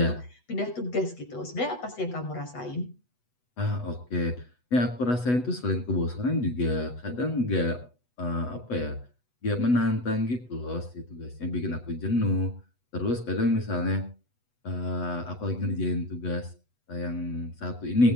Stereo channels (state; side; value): late; right; 8.1 ms